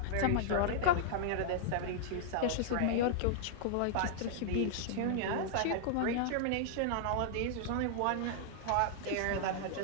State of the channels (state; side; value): different; both; correlation -0.01